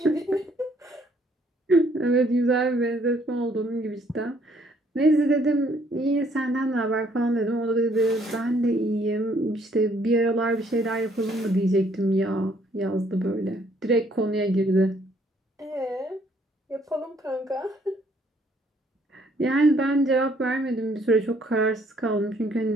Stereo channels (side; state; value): both; normal; correlation 0.65